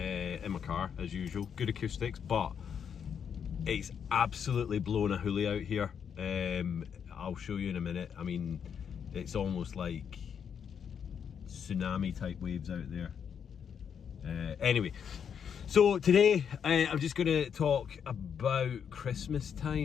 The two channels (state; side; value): quieter; right; 7.6 dB